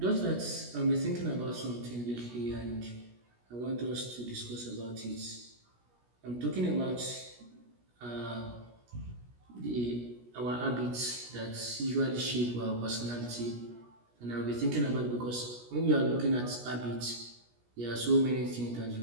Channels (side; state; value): left; late; 17 ms